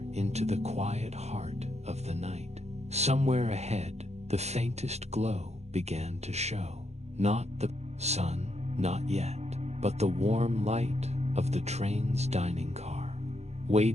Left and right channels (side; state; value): left; late; 0.32 ms